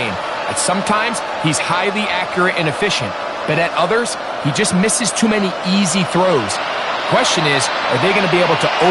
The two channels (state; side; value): identical; both; correlation 1.00